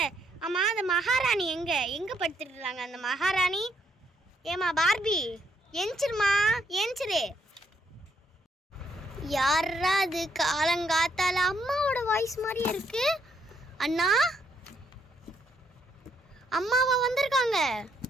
ஆமாம், அந்த மகாராணி எங்கே படுத்துட்டுருக்காங்க? அந்த மகாராணி ஏமா பார்பி, எஞ்சிருமா எஞ்சிரு. யாரா அது காலங்காத்தால? அம்மாவோட வாய்ஸ் மாதிரியே இருக்கு. அண்ணா, அம்மாவா வந்திருக்காங்க?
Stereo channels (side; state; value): both; normal; correlation 0.73